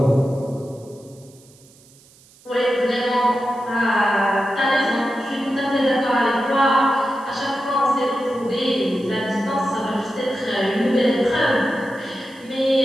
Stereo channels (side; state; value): right; noise; hiss, 27 dB below the sound